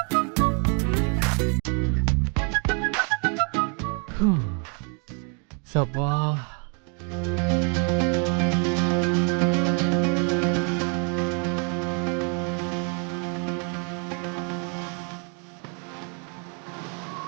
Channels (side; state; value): left; quieter; 38.6 dB